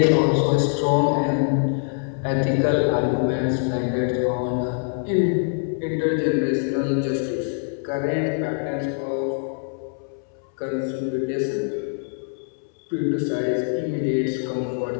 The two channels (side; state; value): right; silent; 63 dB below the other